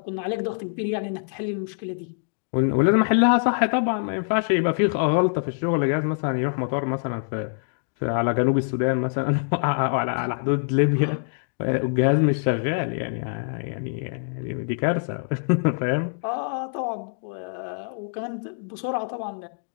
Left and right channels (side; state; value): right; silent; digital silence